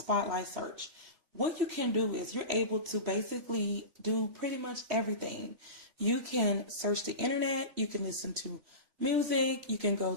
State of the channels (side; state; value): left; late; 3.1 ms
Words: search. What you can do is you're able to basically do pretty much everything. You can search the internet, you can listen to music, you can go